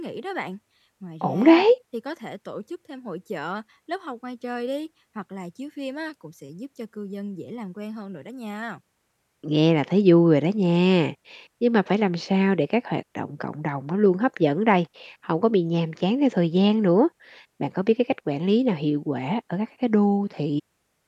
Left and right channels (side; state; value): both; identical; correlation 1.00